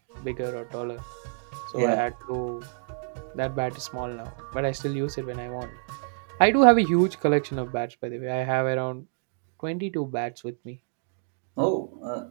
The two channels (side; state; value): left; silent; digital silence